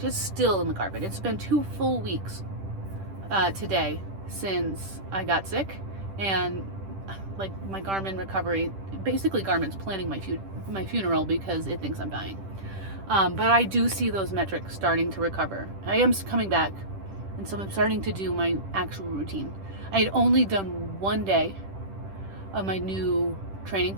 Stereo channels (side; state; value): left; late; 10 ms